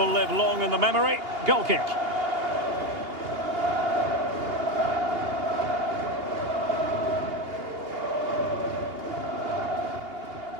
live long in the memory. Goal kick.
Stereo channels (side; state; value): left; late; 2.8 ms